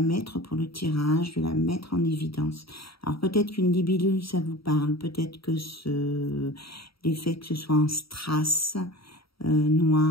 mettre pour le tirage, de la mettre en évidence. Alors, peut-être qu'une libellule, ça vous parle. Peut-être que l'effet que ce soit en strass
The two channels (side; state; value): right; late; 0.75 ms